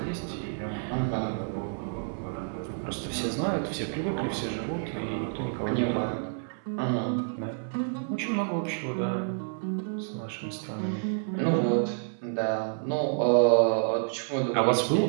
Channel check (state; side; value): silent; left; 59 dB below the other